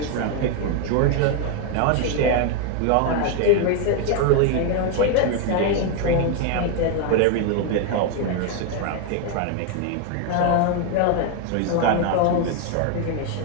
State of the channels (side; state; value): both; different; correlation 0.01